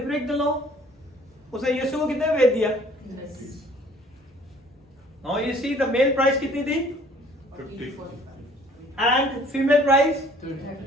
break the law. उसे यीशु को कितने में बेच दिया? Now you see the male price कितनी थी? 50. And female price?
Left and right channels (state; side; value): normal; both; correlation 0.55